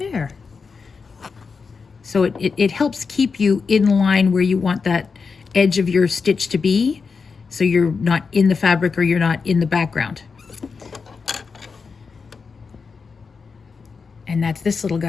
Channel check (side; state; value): right; quieter; 5.1 dB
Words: So it helps keep you in line where you want that edge of your stitch to be, so you're not in the fabric or you're not in the background. And that's this little